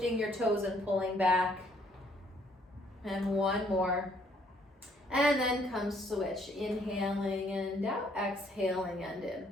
your toes and pulling back. And 1 more. And then come switch. Inhaling and out, exhaling and in.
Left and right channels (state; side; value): normal; both; correlation 0.66